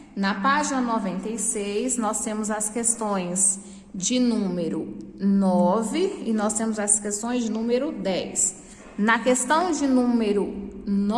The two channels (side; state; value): both; identical; correlation 1.00